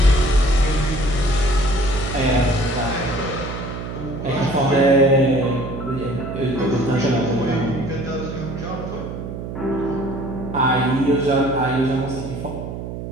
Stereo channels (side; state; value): right; noise; hum, 8 dB below the sound